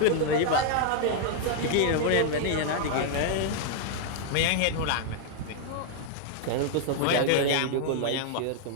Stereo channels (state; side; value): different; both; correlation 0.00